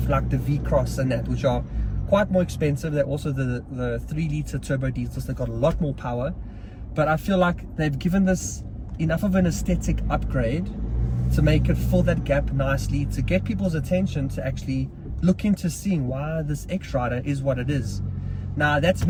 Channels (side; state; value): both; identical; correlation 1.00